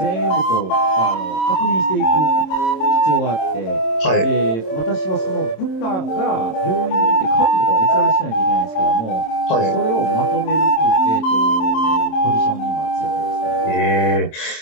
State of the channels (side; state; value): right; late; 27 ms